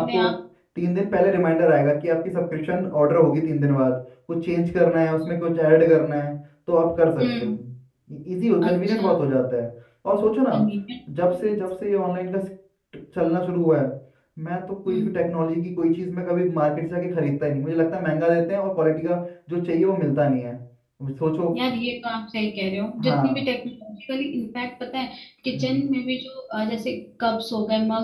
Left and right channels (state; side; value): identical; both; correlation 1.00